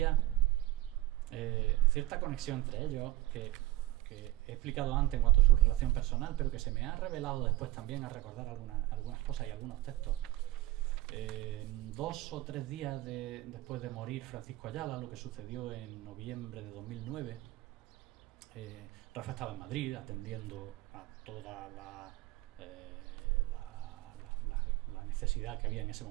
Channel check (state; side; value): quieter; left; 16.7 dB